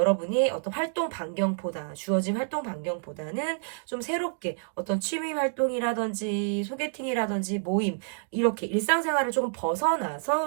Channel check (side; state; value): left; silent; digital silence